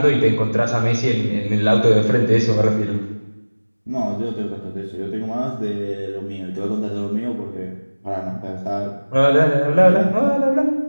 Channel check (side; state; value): both; inverted; correlation -1.00